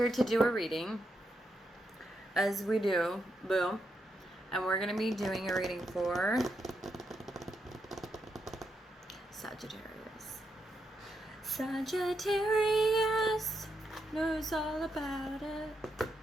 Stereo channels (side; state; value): both; normal; correlation 0.82